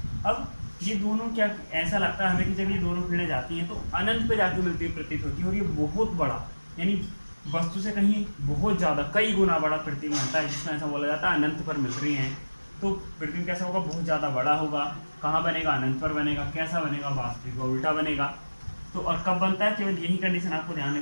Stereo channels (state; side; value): inverted; both; correlation -1.00